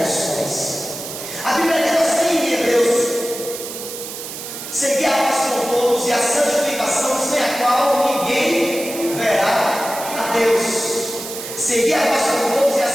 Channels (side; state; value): right; noise; hiss, 9 dB below the sound